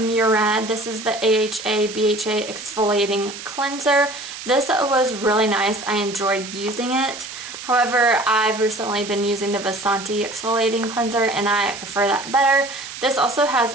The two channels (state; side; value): noise; right; hiss, 11 dB below the sound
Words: This is the AHA BHA exfoliating cleanser. This was really nice. I enjoyed using it. However, I've recently been using the Vasanti exfoliating cleanser and I prefer that better. This also has